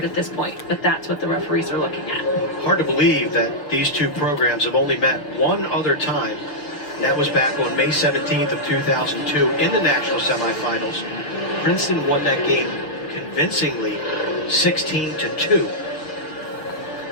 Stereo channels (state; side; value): late; right; 6.8 ms